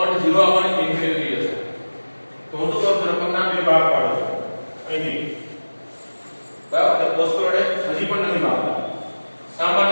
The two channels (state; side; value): inverted; both; correlation -1.00